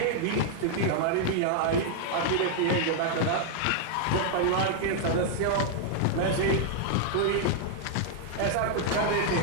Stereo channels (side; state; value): both; different; correlation 0.00